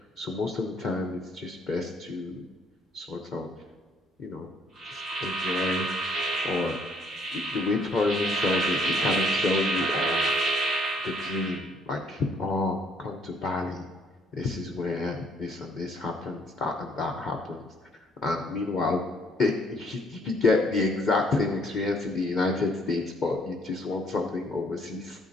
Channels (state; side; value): normal; both; correlation 0.65